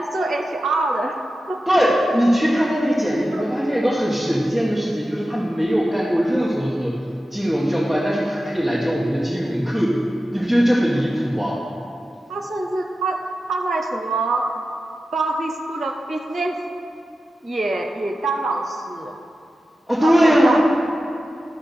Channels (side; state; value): both; normal; correlation 0.93